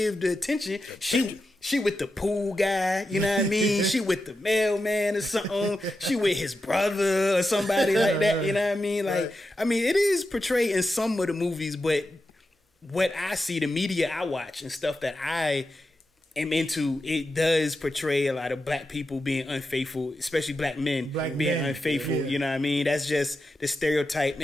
the attention. She with the pool guy, you know what I mean? She with the mailman or something. She with his brother or somebody like that, you know what I mean? Like, I mean, it is portrayed in some of the movies, but what I see, the media I watch and stuff that I am into, it does portray a lot of black people being unfaithful, especially black men being unfaithful. You know what I mean? That's just the stereotype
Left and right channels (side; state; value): both; normal; correlation 0.89